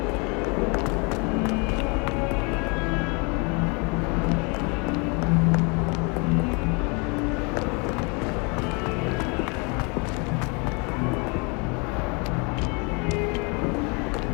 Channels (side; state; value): right; quieter; 31.8 dB